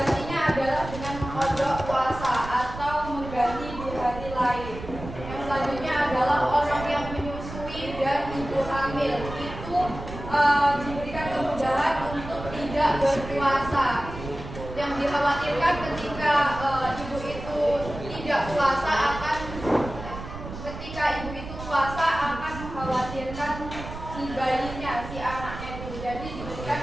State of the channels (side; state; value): right; noise; rumble, 10 dB below the sound